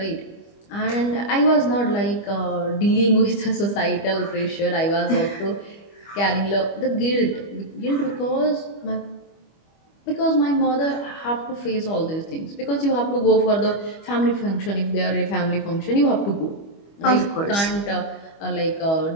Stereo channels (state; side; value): late; right; 25 ms